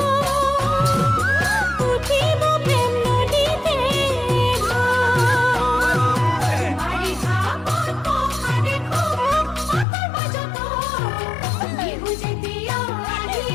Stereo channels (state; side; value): drops out; right; at 9.9 s